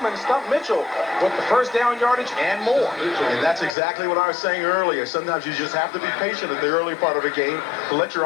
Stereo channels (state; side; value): drops out; right; at 3.7 s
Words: and Stump Mitchell with the first down yardage and more. And that's exactly what I was saying earlier. Sometimes you just have to be patient at the early part of a game to let your